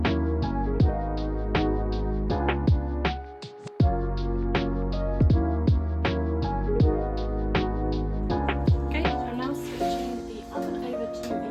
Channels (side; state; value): both; identical; correlation 1.00